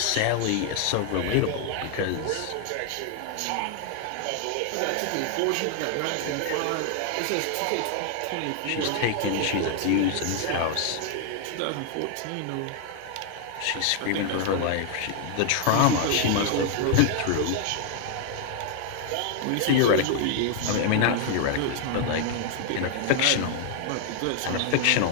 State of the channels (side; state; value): both; different; correlation 0.00